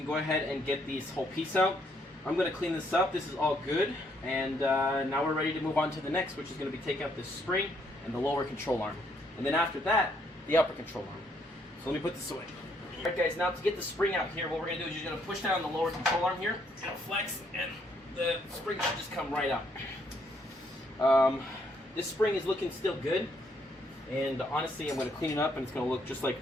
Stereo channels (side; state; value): both; normal; correlation 0.70